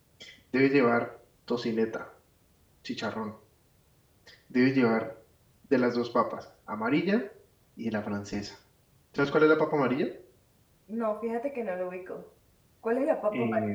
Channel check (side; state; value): both; identical; correlation 1.00